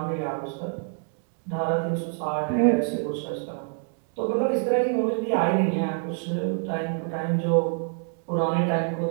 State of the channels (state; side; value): silent; left; 57 dB below the other